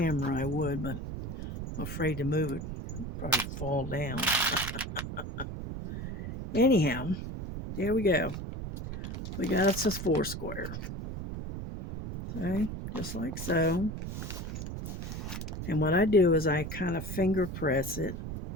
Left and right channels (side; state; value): right; noise; rumble, 6 dB below the sound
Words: I would, but I'm afraid to move it. Probably fall down. Anyhow, there we go. We got us a 4 square. Okay, just like so. And what I do is I kind of finger press it